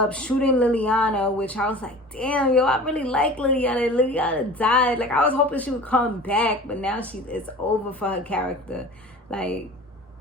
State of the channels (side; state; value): both; normal; correlation 0.40